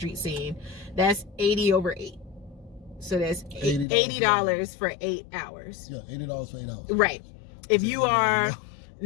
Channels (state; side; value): drops out; right; at 3.9 s